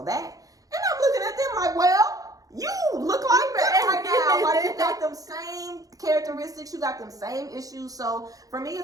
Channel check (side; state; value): left; late; 0.17 ms